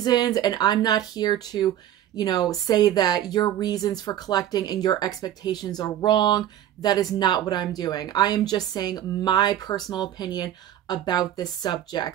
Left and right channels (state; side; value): quieter; left; 11.6 dB